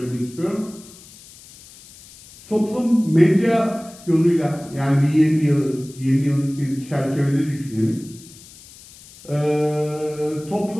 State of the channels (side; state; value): left; noise; hiss, 21 dB below the sound